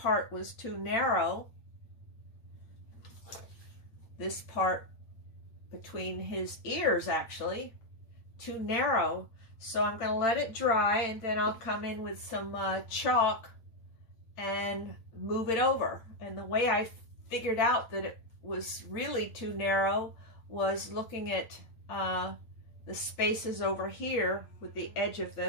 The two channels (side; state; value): right; late; 9.0 ms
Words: was too narrow. This part between his ears, actually, too narrow. So I'm going to let it dry, and then I'll come in with some chalk and move it over. And the way I figured out that it was really too narrow was looking at the spaces over here with the edge of